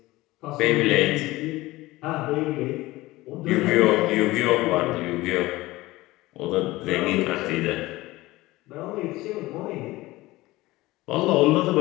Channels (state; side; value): quieter; right; 19.0 dB